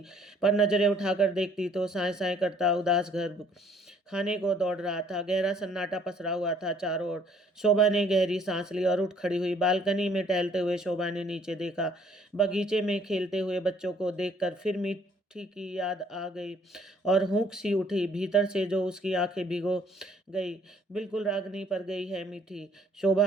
पर नजरें उठाकर देखती तो साए साए करता उदास घर खाने को दौड़ रहा था। गहरा सन्नाटा पसरा हुआ था चारों ओर। शोभा ने गहरी सांस ली और उठ खड़ी हुई। बालकनी में टहलते हुए शोभा ने नीचे देखा। बगीचे में खेलते हुए बच्चों को देखकर फिर मिट्टी की याद आ गई और हुंक सी उठी भीतर से, जो उसकी आंखें भिगो गई। बिल्कुल रागनी पर गई है मीठी।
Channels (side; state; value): both; normal; correlation 0.61